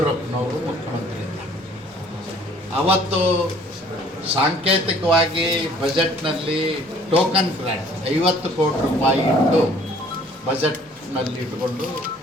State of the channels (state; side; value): normal; both; correlation 0.56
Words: ಮುಖ್ಯಮಂತ್ರಿ ಇದ್ದಾಗ ಅವತ್ತು ಸಾಂಕೇತಿಕವಾಗಿ ಬಜೆಟ್ನಲ್ಲಿ ಟೋಕನ್ ಗ್ರಾಂಟ್ 50 ಕೋಟಿ ರೂಪಾಯಿ ಇಟ್ಟು ಬಜೆಟ್ನಲ್ಲಿ ಇಟ್ಕೊಂಡು